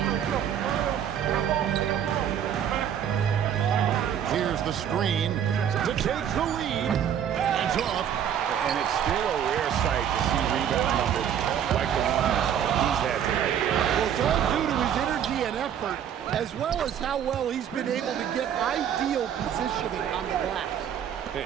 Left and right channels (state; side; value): quieter; left; 9.2 dB